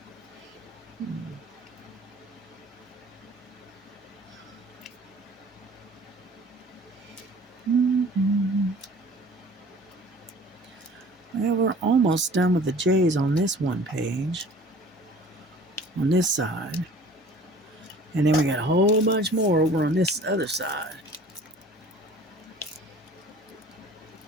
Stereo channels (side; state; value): both; normal; correlation 0.48